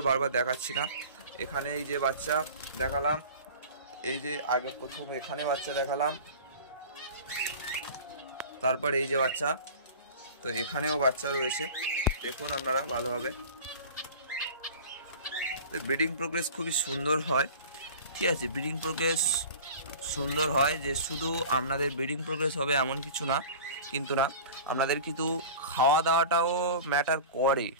বারবার দেখাচ্ছি না। এখানে এই যে বাচ্চা দেখালাম, এই যে আগে প্রথম এখানে বাচ্চা দেখালাম, তারপর এই যে বাচ্চা। তো এখানেও বাচ্চা রয়েছে, দেখুন আপনারা ভালোভাবে। ব্রিডিং প্রোগ্রেস খুবই সুন্দর হয়, ঠিক আছে। ব্রিডিং প্রোগ্রেস সুন্দর হয় যে শুধু আপনাদের ব্রিডিং প্রোগ্রেস হবে এমন কিছু না, কিন্তু না, আপনাদের কিন্তু খাওয়া দাওয়াটাও ম্যাটার করে,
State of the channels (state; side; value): inverted; both; correlation -0.38